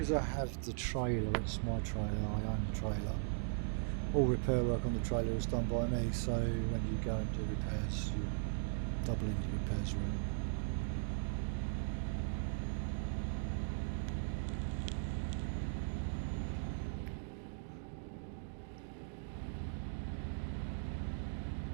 I have the trailer, it's my trailer, I own the trailer. All repair work on the trailer is done by me, so when you go and do repairs, you double into repairs really.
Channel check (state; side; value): silent; left; digital silence